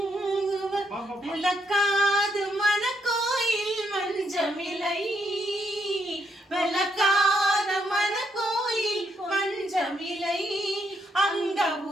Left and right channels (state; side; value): normal; both; correlation 0.76